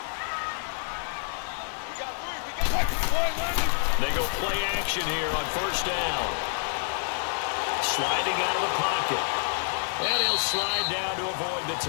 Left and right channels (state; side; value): silent; right; 59 dB below the other